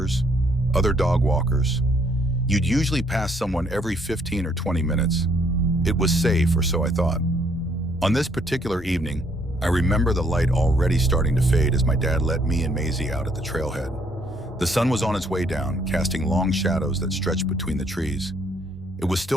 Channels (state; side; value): normal; both; correlation 0.67